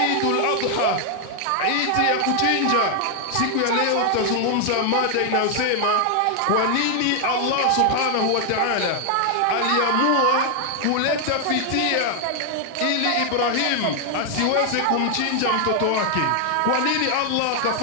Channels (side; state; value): both; different; correlation 0.00